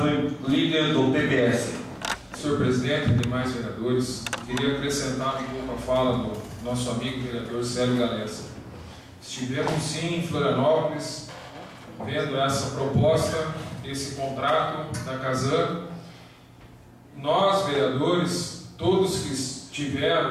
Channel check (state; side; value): identical; both; correlation 1.00